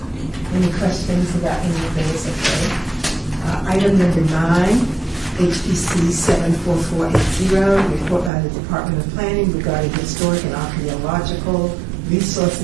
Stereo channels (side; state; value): left; drops out; at 8.3 s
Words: Any questions about any of those? Okay. Item number 9, HPC 74480, report by the Department of Planning regarding historic and archaeological